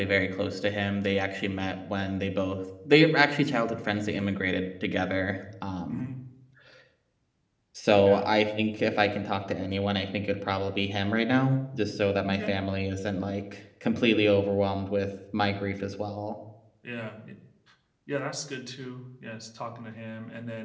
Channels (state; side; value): identical; both; correlation 1.00